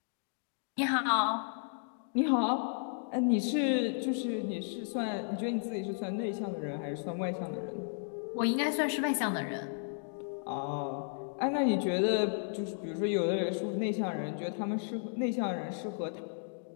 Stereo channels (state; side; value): silent; right; digital silence